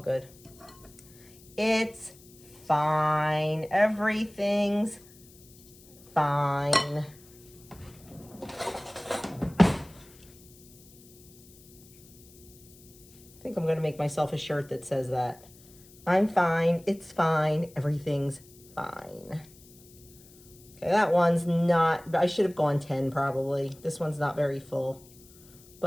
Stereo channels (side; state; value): left; noise; hiss, 24 dB below the sound